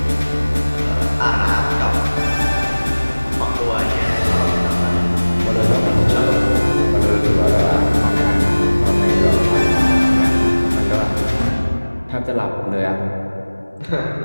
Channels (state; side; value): inverted; both; correlation -1.00